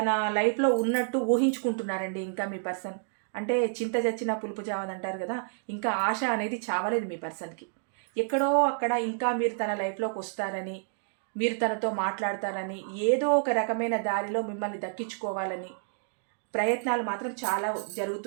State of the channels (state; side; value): silent; left; digital silence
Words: లైఫ్లో ఉన్నట్టు ఊహించుకుంటున్నారండి ఇంకా మీ పర్సన్. అంటే చింత చచ్చినా పులుపు చావదంటారు కదా, ఇంకా ఆశ అనేది చావలేదు మీ పర్సన్కి. ఎక్కడో అక్కడ ఇంకా మీరు తన లైఫ్లోకి వస్తారని, మీరు తనతో మాట్లాడతారని, ఏదో ఒక రకమైన దారిలో మిమ్మల్ని దక్కించుకోవాలని ప్రయత్నాలు మాత్రం చాలా